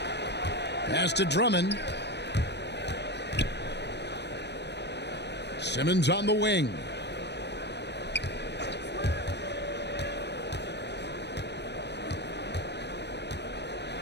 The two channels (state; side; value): late; right; 0.50 ms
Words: Pass to Drummond. Simmons on the wing.